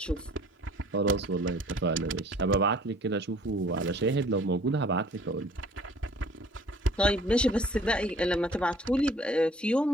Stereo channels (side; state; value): both; normal; correlation 0.53